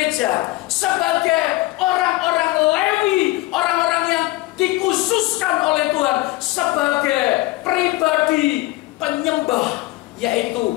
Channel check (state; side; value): quieter; right; 19.6 dB